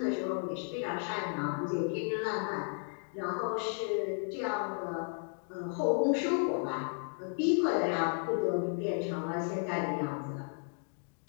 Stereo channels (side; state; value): right; silent; 55 dB below the other